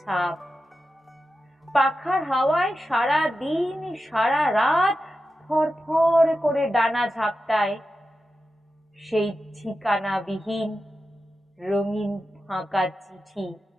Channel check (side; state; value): both; normal; correlation 0.91